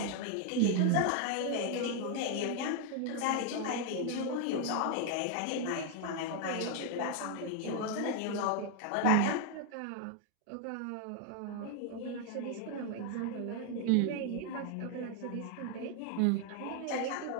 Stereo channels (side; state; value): both; different; correlation 0.00